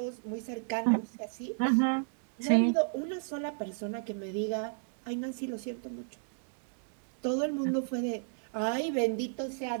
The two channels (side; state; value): left; silent; digital silence